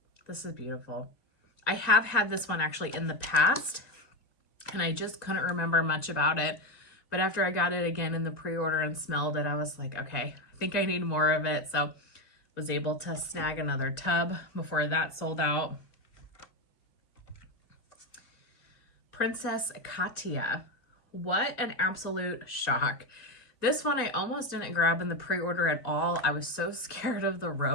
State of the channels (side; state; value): right; late; 2.1 ms